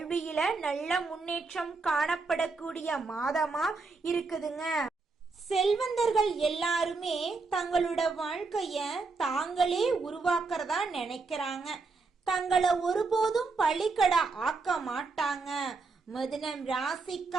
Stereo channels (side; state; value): left; quieter; 4.0 dB